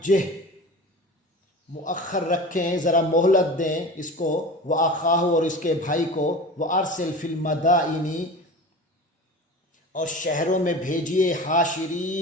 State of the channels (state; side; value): normal; both; correlation 0.34